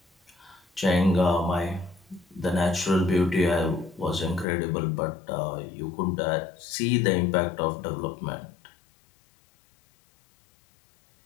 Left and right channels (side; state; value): right; drops out; at 4.5 s